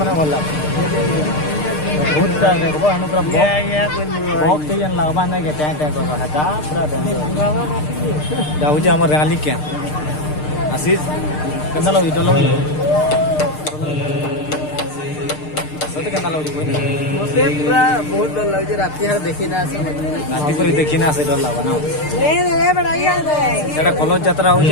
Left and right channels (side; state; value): right; late; 6.6 ms